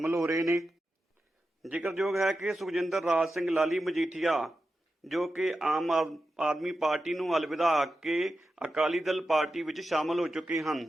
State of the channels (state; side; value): normal; both; correlation 0.91